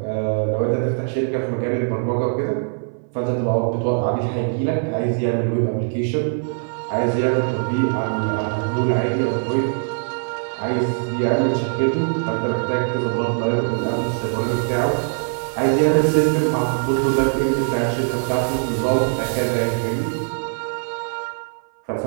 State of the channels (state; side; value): silent; left; 57 dB below the other